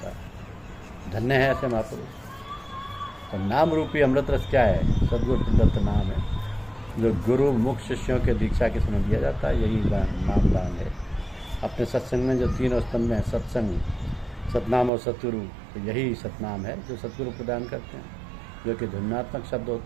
है। धन्य है ऐसे महापुरुष। तो नाम रूपी अमृत रस क्या है? सद्गुरु प्रदत्त नाम है, जो गुरु मुख शिष्यों के दीक्षा के समय दिया जाता है। यही नाम दान है। अपने सत्संग में जो 3 स्तंभ हैं, सत्संग, सतनाम और सतगुरु, तो यही सतनाम है जो सतगुरु प्रदान करते हैं, जो कि ध्वन्यात्मक शब्द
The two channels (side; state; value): left; drops out; at 14.9 s